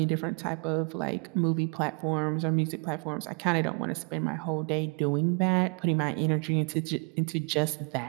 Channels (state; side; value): quieter; left; 32.2 dB